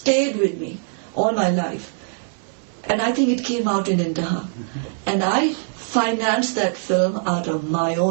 with me all my life. And I think it came out in Intaha. And I financed that film out of my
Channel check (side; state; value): left; silent; digital silence